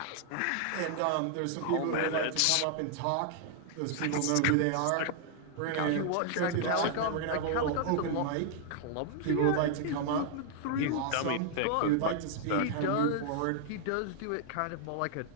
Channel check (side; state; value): both; different; correlation 0.00